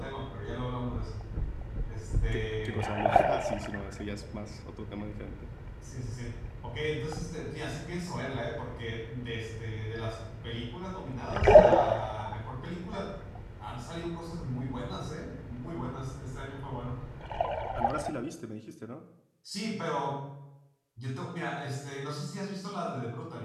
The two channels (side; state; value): both; identical; correlation 1.00